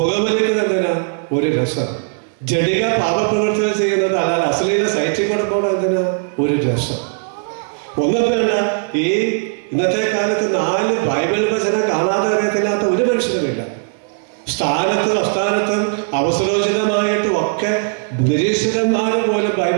എന്തിനാ? ഒരു രസം. ജഡിക പാപപ്രവൃത്തികൾ ചെയ്യുന്നത്, അല്ലാതെ അശ്ലീല സൈറ്റിൽ കൂടെ പോകണം എന്തിനാ? ഒരു രസം. ഒന്നും വേണ്ട. ഈ ഇന്നത്തെ കാലത്ത് 4 ബൈബിൾ വചനം കാണാതെ അറിയത്തില്ലാത്ത ഒരു മനുഷ്യനുമില്ല. സ്ഥാനത്തും അസ്ഥാനത്തും അവസരോചിതമായിട്ടും ഒക്കെ നിരീശ്വരന്മാർ പോലും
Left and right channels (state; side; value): silent; left; digital silence